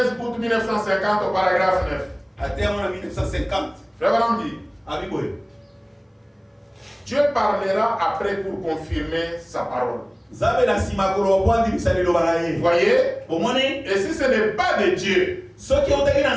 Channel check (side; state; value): both; identical; correlation 1.00